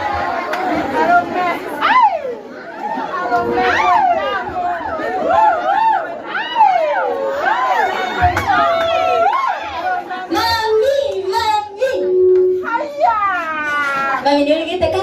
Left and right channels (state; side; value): identical; both; correlation 1.00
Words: Mami ndio kita